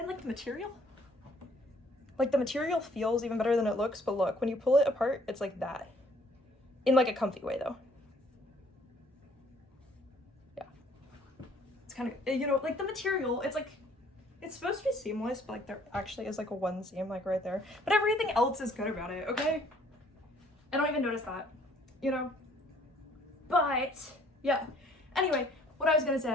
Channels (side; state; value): both; normal; correlation 0.60